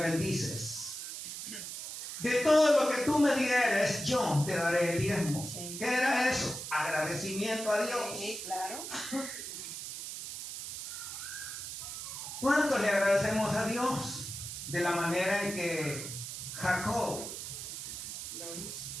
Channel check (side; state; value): right; noise; hiss, 7 dB below the sound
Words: de todo lo que tú me dieres, yo te daré el diezmo. Sí. ¿Qué era eso? Agradecimiento a Dios. Sí, claro. ¿Cuánto le agradecemos a Dios de la manera en que Jacob Lo hizo.